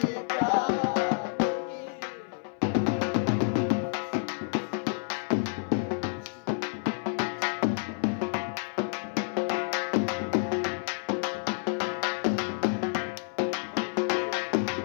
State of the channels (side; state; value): right; silent; 58 dB below the other